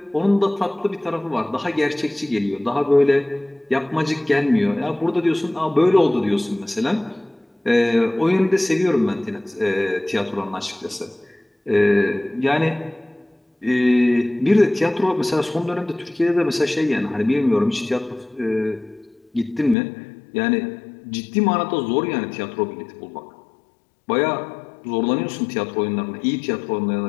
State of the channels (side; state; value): right; drops out; at 19.8 s